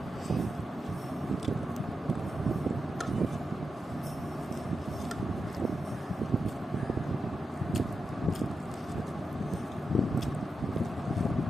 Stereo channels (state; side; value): normal; both; correlation 0.88